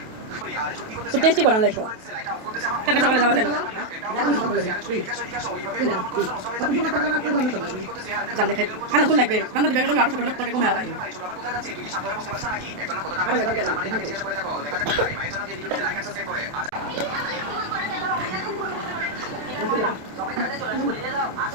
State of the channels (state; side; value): late; left; 28 ms